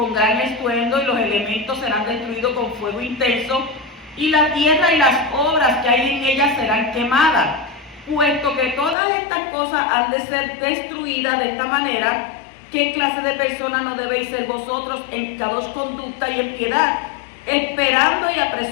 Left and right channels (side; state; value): right; drops out; at 9.0 s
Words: gran estruendo y los elementos serán destruidos con fuego intenso, y la tierra y las obras que hay en ella serán quemadas. Puesto que todas estas cosas han de ser destruidas de esta manera, ¿qué clase de personas no debéis ser vosotros en cada conducta y en piedad, esperando y